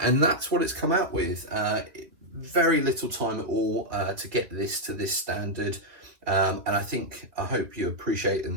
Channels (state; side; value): late; left; 2.7 ms